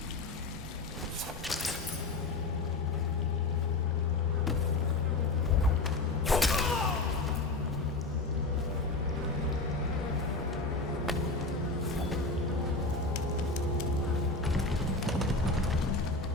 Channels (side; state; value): right; quieter; 3.3 dB